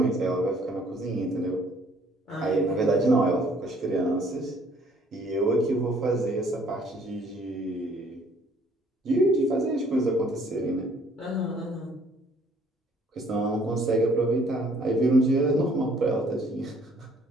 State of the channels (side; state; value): both; normal; correlation 0.61